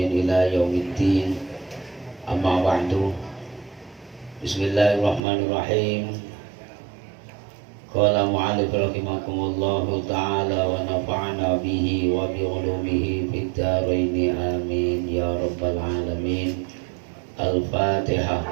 ila yaumiddin. Amma ba'du. Bismillahirrahmanirrahim. Qala mu'allif rahimakumullahu ta'ala wa nafa'ana bihi wa bi ulumihi fid dharain amin ya rabbal alamin. Al-Fatihah.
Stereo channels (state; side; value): drops out; left; at 5.2 s